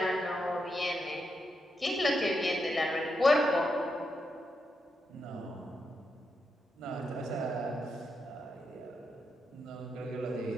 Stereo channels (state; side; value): normal; both; correlation 0.83